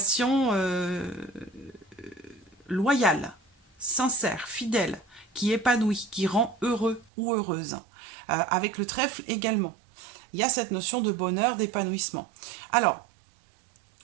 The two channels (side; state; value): left; drops out; at 7.1 s